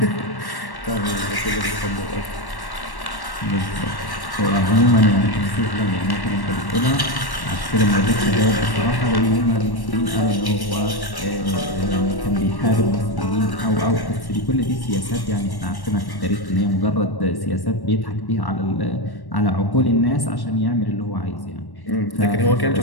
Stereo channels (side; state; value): right; late; 1.1 ms